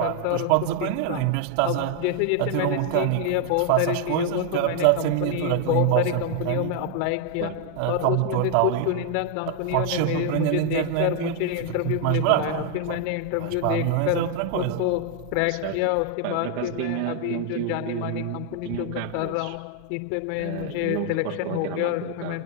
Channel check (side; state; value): both; different; correlation 0.00